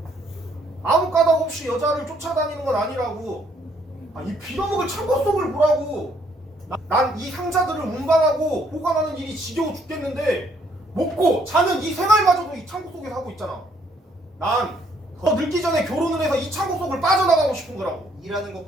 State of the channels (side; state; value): both; normal; correlation 0.67